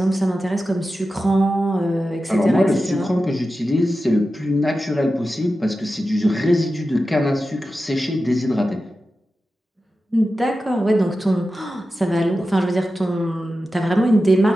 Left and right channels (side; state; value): both; normal; correlation 0.92